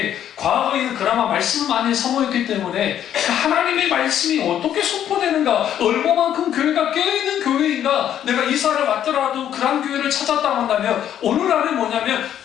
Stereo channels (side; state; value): right; quieter; 10.3 dB